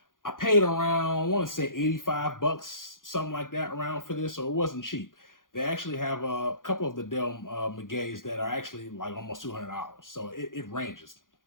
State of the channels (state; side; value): late; right; 0.90 ms